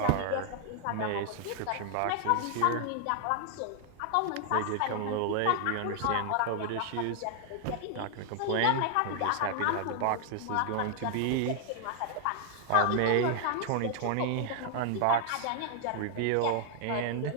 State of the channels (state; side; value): different; both; correlation 0.00